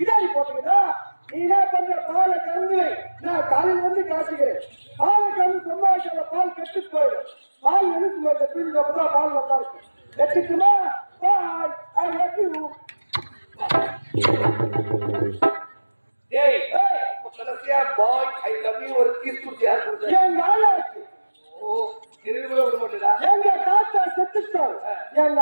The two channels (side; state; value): both; inverted; correlation -1.00